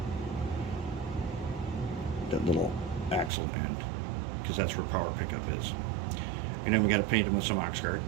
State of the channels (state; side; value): drops out; left; at 3.3 s